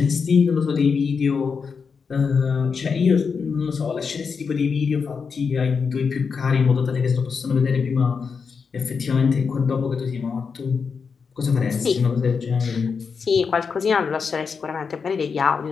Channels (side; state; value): right; quieter; 5.6 dB